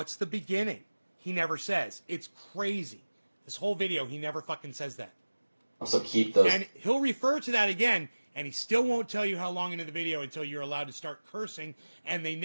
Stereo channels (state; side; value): inverted; both; correlation -1.00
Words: the beginning? He never says. It's crazy. This whole video, he never fucking says that. So keep those. And he'll refer to that again, and he still won't tell you how long into the video until you're allowed to start cursing, and they